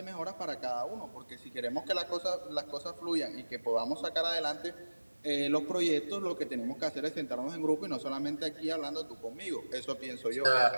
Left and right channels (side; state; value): both; inverted; correlation -1.00